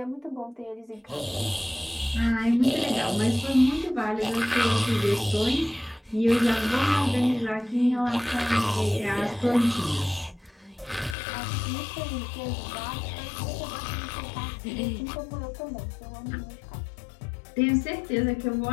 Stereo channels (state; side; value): drops out; right; at 11.2 s